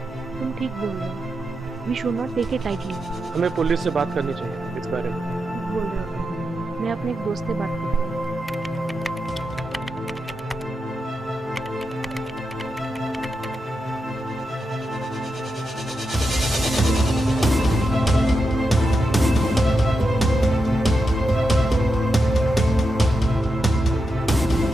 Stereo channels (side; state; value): both; normal; correlation 0.87